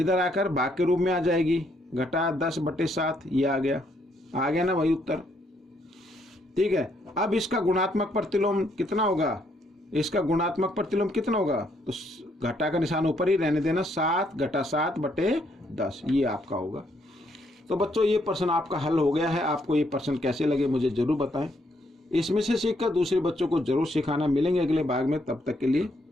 आकर भाग के रूप में आ जाएगी, घटा 10/7, ये आ गया ना वही उत्तर, ठीक है। अब इसका गुणात्मक प्रतिलोम कितना होगा, इसका गुणात्मक प्रतिलोम कितना होगा, तो घटा का निशान ऊपर ही रहने देना, 7 घटा 7/10, ये आपका होगा। तो बच्चों ये प्रश्न आपका हल हो गया है। आपको ये प्रश्न कैसे लगे मुझे जरूर बताएं। इसमें से सीखकर दूसरे बच्चों को जरूर सिखाना। मिलेंगे अगले भाग में, तब तक के लिए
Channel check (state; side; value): normal; both; correlation 0.72